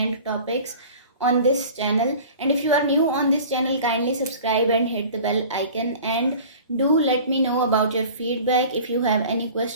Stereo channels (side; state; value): both; inverted; correlation -0.42